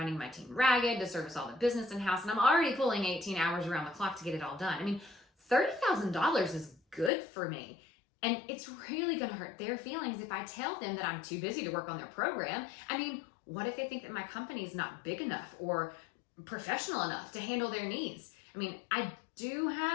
my team ragged to service all the business in-house, and I'm already pulling 18 hours around the clock to get it all done. $30,000 is good for me. And it's really going to hurt their feelings if I tell them that I'm too busy to work on their program. What if they think that my company is not big enough or professional enough to handle their needs? I mean, I do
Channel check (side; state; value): right; drops out; at 7.1 s